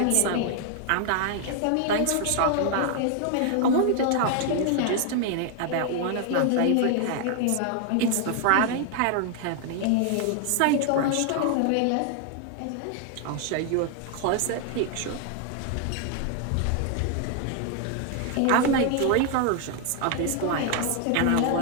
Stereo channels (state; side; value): different; both; correlation 0.00